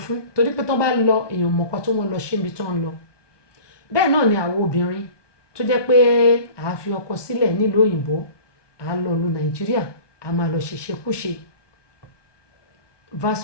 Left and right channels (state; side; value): late; right; 1.2 ms